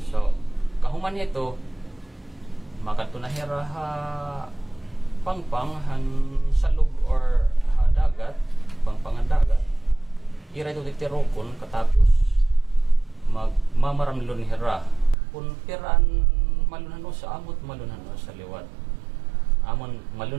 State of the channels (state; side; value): drops out; left; at 15.2 s